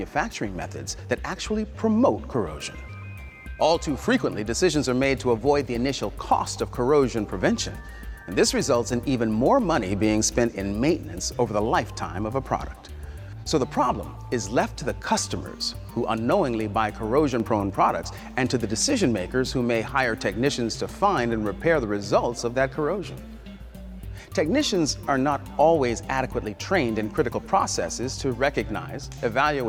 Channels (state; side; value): identical; both; correlation 1.00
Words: methods that actually promote corrosion. All too frequently, decisions are made to avoid the initial cost of corrosion prevention, and this results in even more money being spent in maintenance over the lifetime of a product. So the problem is left to the customers who unknowingly buy corrosion-prone products, and to the decision makers who may hire technicians to find and repair the results of that corrosion. Technicians are not always adequately trained in critical processes to recognize,